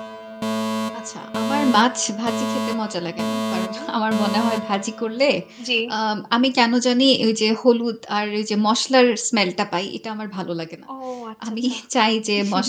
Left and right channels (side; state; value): both; identical; correlation 1.00